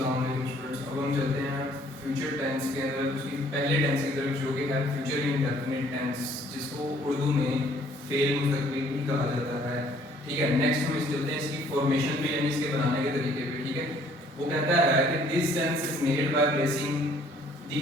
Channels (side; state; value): both; normal; correlation 0.60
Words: वालेकुम स्टूडेंट्स। अब हम चलते हैं फ्यूचर टेंस के अंदर, उसकी पहले टेंस की तरफ जो कि है फ्यूचर इंडेफिनिट टेंस, जिसको उर्दू में फेल मुस्तकबिल भी कहा जाता है। ठीक है, नेक्स्ट हम इस चलते हैं इसकी फॉर्मेशन पे, यानी इसके बनाने के तरीके पे। ठीक है, वो कहता है कि this tense is made by placing the